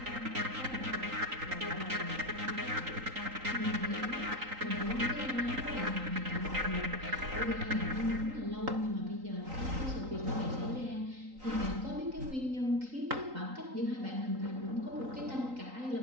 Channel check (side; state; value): left; late; 3.9 ms